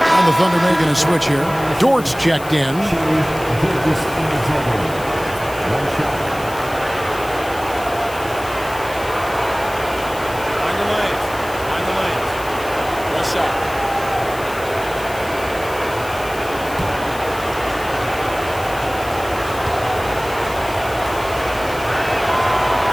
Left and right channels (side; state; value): left; noise; hiss, 16 dB below the sound